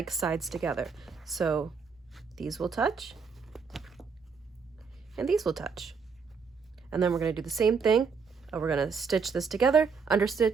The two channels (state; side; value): quieter; left; 5.5 dB